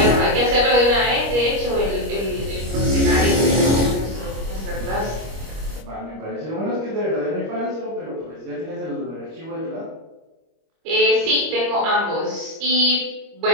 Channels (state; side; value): late; left; 25 ms